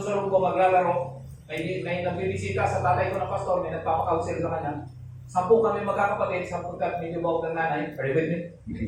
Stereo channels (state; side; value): identical; both; correlation 1.00